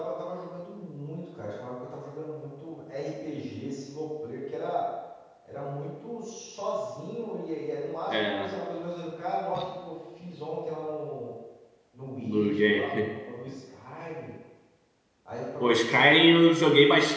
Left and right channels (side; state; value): both; identical; correlation 1.00